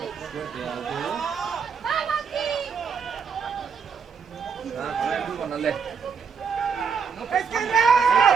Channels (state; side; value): quieter; left; 6.2 dB